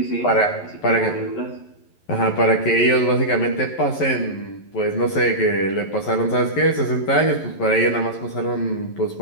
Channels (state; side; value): late; right; 11 ms